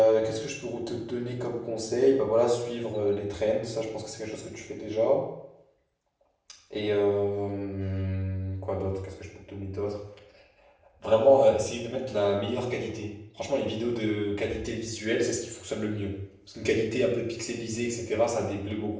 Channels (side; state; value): both; identical; correlation 1.00